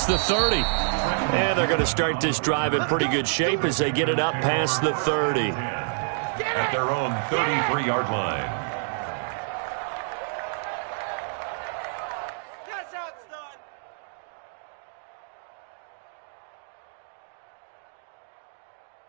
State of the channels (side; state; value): left; silent; digital silence